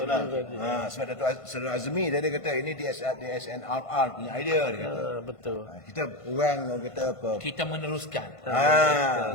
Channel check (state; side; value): late; right; 1.5 ms